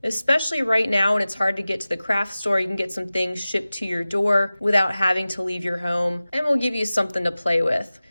especially right now when it's hard to get to the craft store. You can get some things shipped to your door without having to leave your home, and we'll give you something to play with.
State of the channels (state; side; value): inverted; both; correlation -0.97